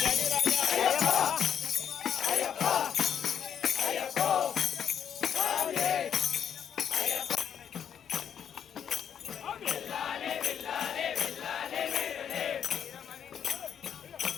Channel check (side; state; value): right; quieter; 8.5 dB